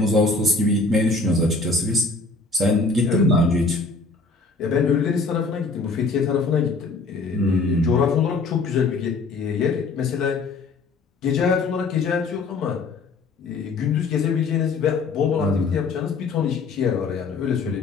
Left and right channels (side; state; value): right; quieter; 3.9 dB